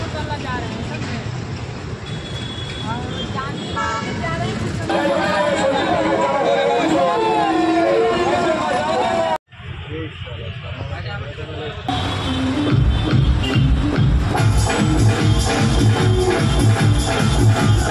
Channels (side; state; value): both; identical; correlation 1.00